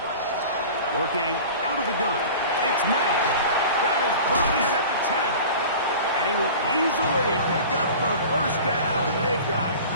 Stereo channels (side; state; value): both; inverted; correlation -0.38